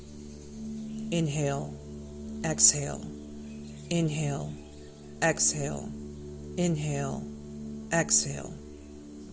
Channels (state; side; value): identical; both; correlation 1.00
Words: Inhale, exhale, inhale, exhale, inhale, exhale.